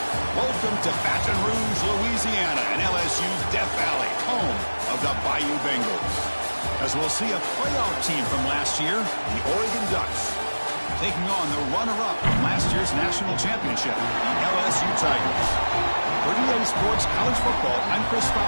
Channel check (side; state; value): both; inverted; correlation -1.00